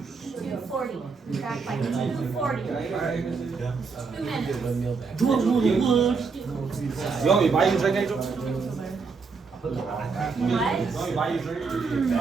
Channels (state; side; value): quieter; left; 4.9 dB